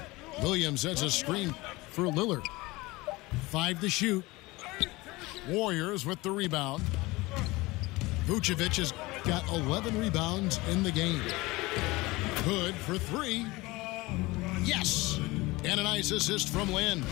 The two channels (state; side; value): quieter; right; 21.6 dB